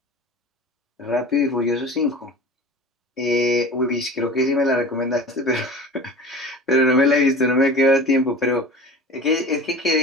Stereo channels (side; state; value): both; normal; correlation 0.37